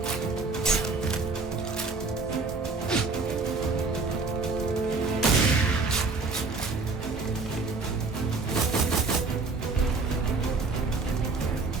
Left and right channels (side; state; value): left; quieter; 4.0 dB